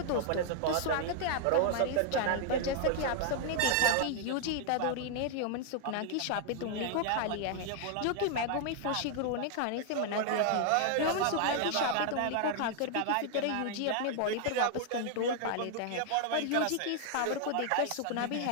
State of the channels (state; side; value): different; both; correlation 0.00